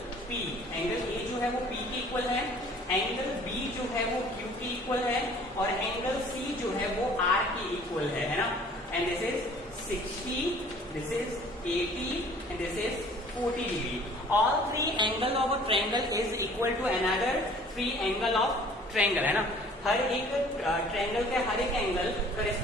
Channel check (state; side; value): normal; both; correlation 0.52